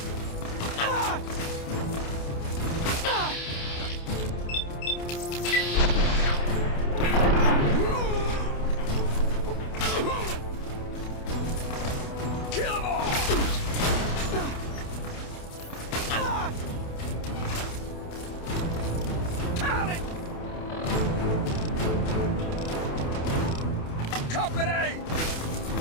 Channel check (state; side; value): late; right; 28 ms